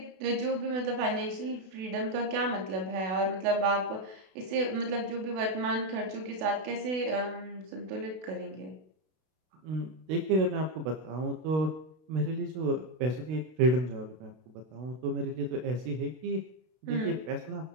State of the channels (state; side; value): late; left; 32 ms